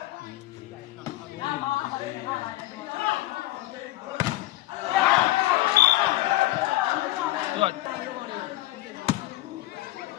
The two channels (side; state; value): right; quieter; 16.7 dB